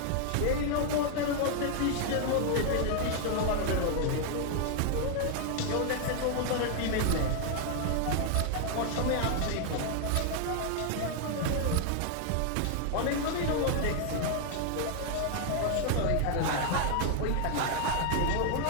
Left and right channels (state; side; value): different; both; correlation 0.00